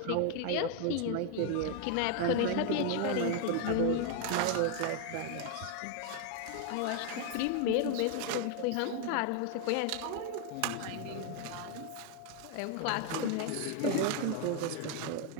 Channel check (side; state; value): both; different; correlation 0.00